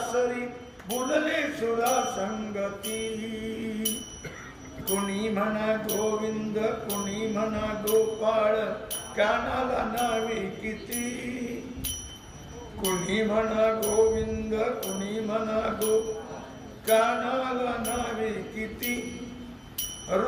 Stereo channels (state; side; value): identical; both; correlation 1.00